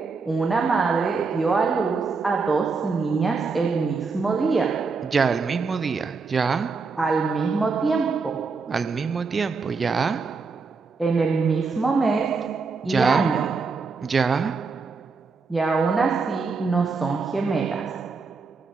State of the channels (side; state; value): left; quieter; 4.6 dB